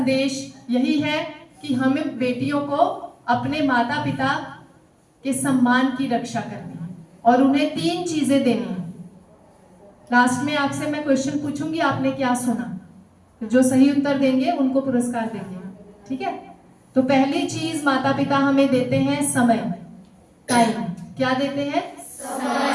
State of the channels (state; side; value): identical; both; correlation 1.00